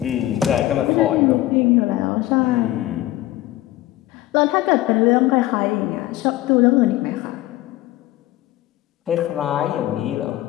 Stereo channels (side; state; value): right; quieter; 15.6 dB